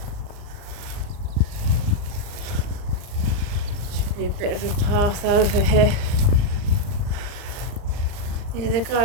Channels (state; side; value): late; left; 39 ms